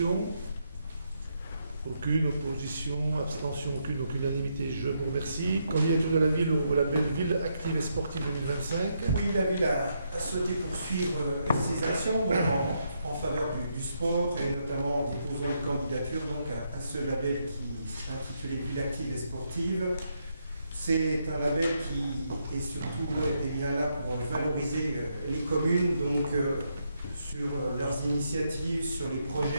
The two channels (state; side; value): inverted; both; correlation -0.79